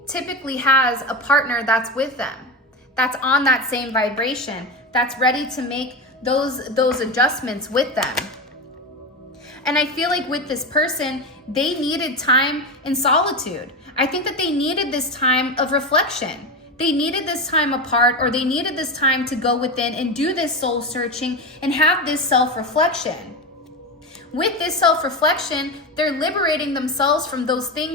typically has a partner that's with them, that's on that same vibration, that's ready to make those adjustments with them. And I feel like with this person, they needed time in solitude. I think that they needed this time of reflection. They needed this time apart, or they needed this time to go within and do this soul searching and have this self-reflection. With this self-reflection, they're liberating themselves from those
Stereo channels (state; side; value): normal; both; correlation 0.19